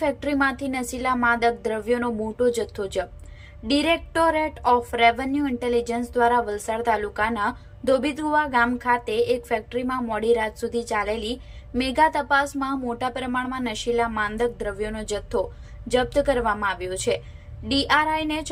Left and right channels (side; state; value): both; identical; correlation 1.00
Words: ફેક્ટરીમાંથી નશીલા માદક દ્રવ્યોનો મોટો જથ્થો જપ્ત. ડિરેક્ટોરેટ ઓફ રેવન્યુ ઇન્ટેલિજન્સ દ્વારા વલસાડ તાલુકાના ધોબીકુવા ગામ ખાતે એક ફેક્ટરીમાં મોડી રાત સુધી ચાલેલી મેગા તપાસમાં મોટા પ્રમાણમાં નશીલા માદક દ્રવ્યોનો જથ્થો જપ્ત કરવામાં આવ્યો છે. ડીઆરઆઈને